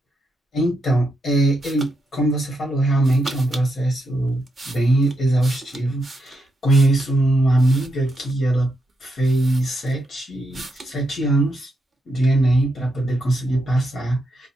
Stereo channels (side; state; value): both; normal; correlation 0.82